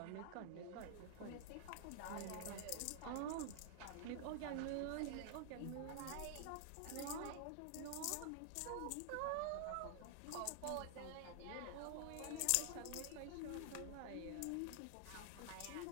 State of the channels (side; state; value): both; different; correlation 0.00